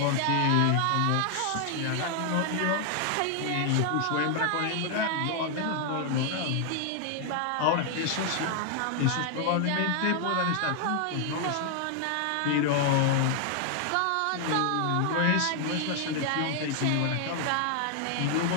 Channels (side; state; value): both; different; correlation 0.00